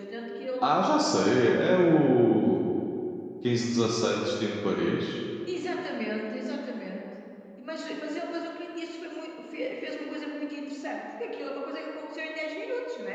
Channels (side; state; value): both; identical; correlation 1.00